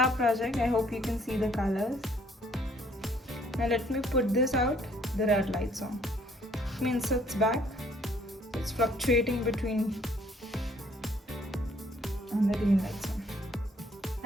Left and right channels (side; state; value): both; normal; correlation 0.63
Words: project. I hope you can see the colors. Now let me put this out. The red light's on. It means it's back. It's fluctuating between and the green lights on.